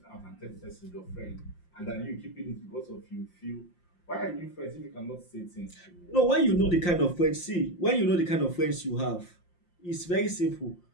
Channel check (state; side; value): late; right; 5.7 ms